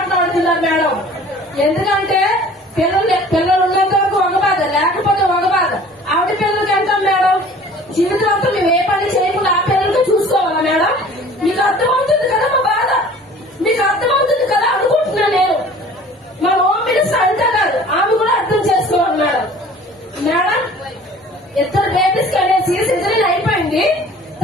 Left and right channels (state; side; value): normal; both; correlation 0.47